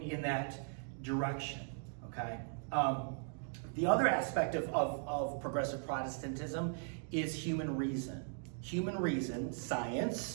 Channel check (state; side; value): silent; left; 52 dB below the other